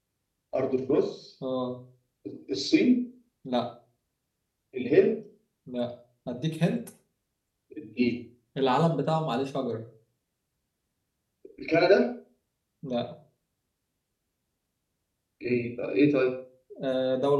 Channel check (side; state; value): both; identical; correlation 1.00